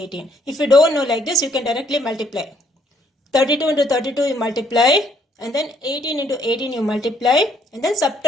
If you don't know like this, you can directly multiply. 32 into 32 you multiply, and then 18 into 18 you multiply, and then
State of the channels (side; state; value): both; normal; correlation 0.67